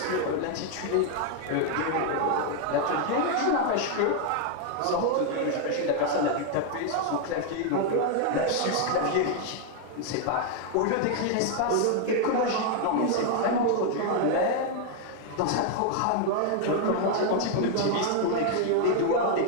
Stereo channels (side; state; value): both; different; correlation 0.00